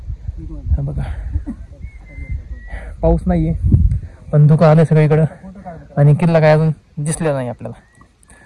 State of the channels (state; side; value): identical; both; correlation 1.00